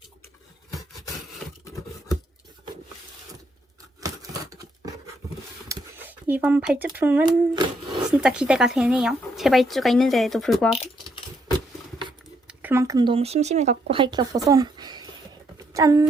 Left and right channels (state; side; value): normal; both; correlation 0.74